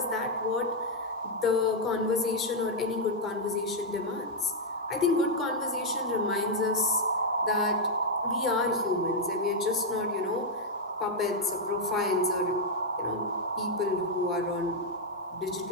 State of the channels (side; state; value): both; normal; correlation -0.02